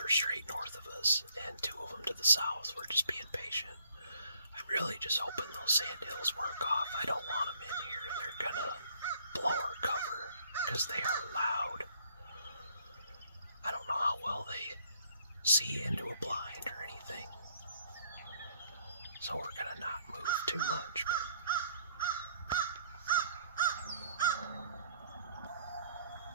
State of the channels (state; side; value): inverted; both; correlation -0.62